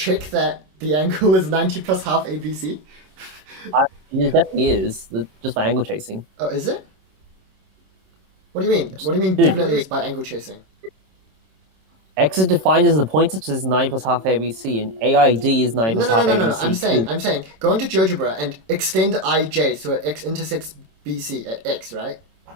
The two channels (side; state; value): left; late; 27 ms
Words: that the angle is 90 plus half ABC. It definitely is, just by angle chasing. Oh, is it? What do you mean? What do you mean Dude. definitely is by angle chasing? X is defined as the point such as 9 plus half ABC, and AID is 9 plus half ABC. No. I'm saying, go into GeoGebra and extend IJ so x intersects BC at x, right?